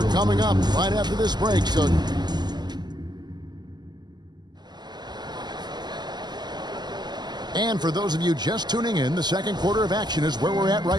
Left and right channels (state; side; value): late; left; 0.21 ms